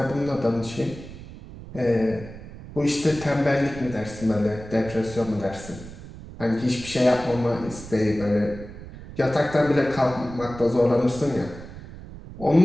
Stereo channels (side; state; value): right; noise; rumble, 14 dB below the sound